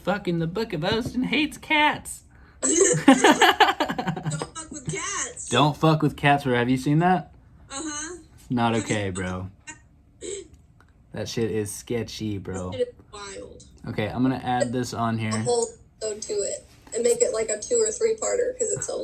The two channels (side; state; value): both; identical; correlation 1.00